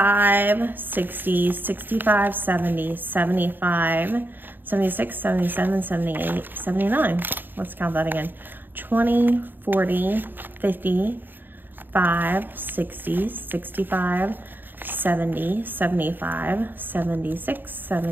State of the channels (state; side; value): late; left; 0.093 ms